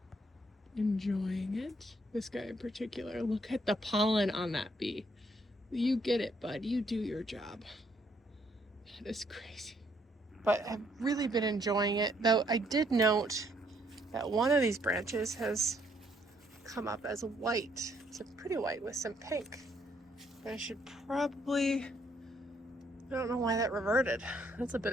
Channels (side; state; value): both; normal; correlation 0.69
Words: enjoying it. This guy in particular, look at the pollen on that bee. You get it, bud. You do your job. That is crazy. But I've really been enjoying it, though I did note that one of these branches has come up as white. It's a pretty white with some pink. I should probably, I don't know why that reverted. That's a bit